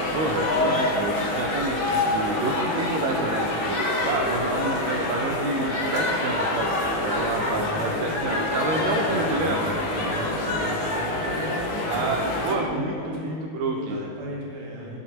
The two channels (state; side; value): late; left; 19 ms